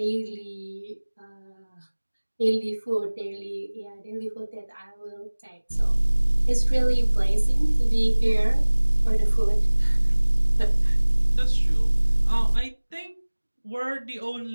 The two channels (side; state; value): both; inverted; correlation -1.00